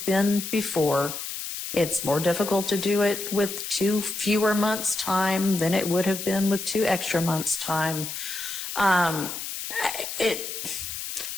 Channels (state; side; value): noise; left; hiss, 6 dB below the sound